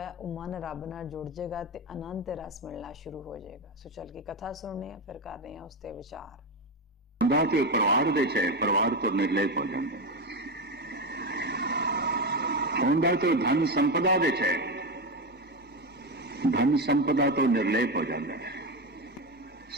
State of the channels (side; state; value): both; normal; correlation 0.14